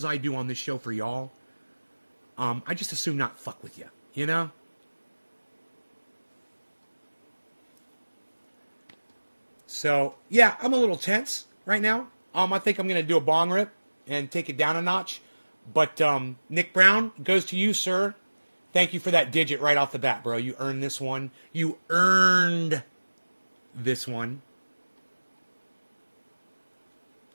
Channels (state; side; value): inverted; both; correlation -1.00